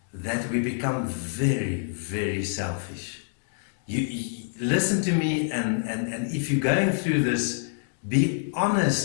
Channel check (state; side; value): silent; right; digital silence